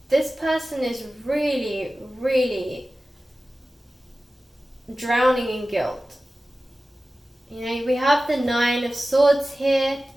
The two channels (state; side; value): normal; both; correlation 0.95